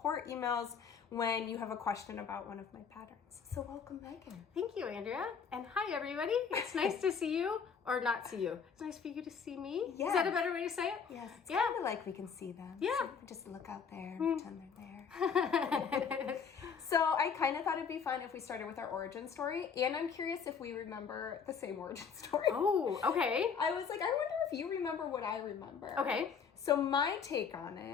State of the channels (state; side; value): quieter; right; 6.4 dB